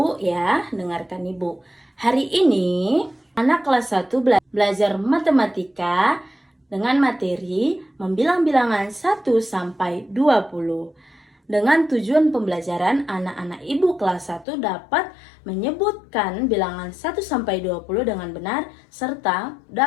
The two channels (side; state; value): right; drops out; at 14.5 s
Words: ya, dengarkan ibu. Hari ini anak kelas 1 belajar matematika dengan materi membilang bilangan 1 sampai 20. Dengan tujuan pembelajaran, anak-anak ibu kelas 1 dapat menyebutkan bilangan 1 sampai 20 dengan benar serta